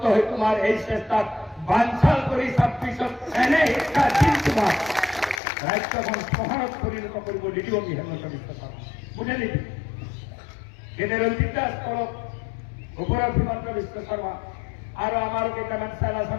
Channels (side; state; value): right; drops out; at 5.4 s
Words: হৈ তোমাৰ এই চেষ্টাত বাঞ্চাল কৰি 26ত এনে শিক্ষা দিম তোমাক ৰাজ্যখন চহৰত পৰিণত কৰিব নিদিব আমি হেমন্ত বিশ্ব শৰ্মা বুঝে নিবি যেনে ৰঞ্জিত দাস কৰক ওপৰত হিমন্ত বিশ্ব শৰ্মা আৰু আমাৰো কেইটামান চেলা